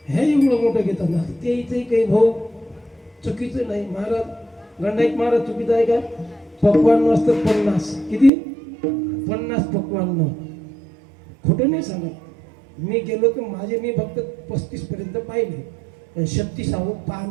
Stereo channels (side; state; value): left; drops out; at 8.3 s